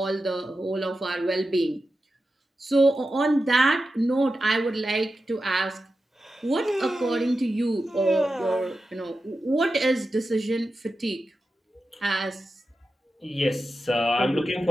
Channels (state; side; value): normal; both; correlation 0.91